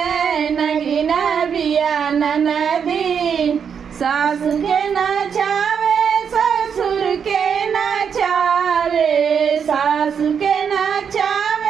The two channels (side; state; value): left; quieter; 7.1 dB